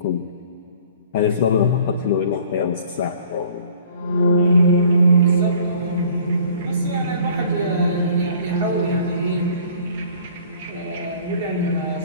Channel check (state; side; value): inverted; both; correlation -0.52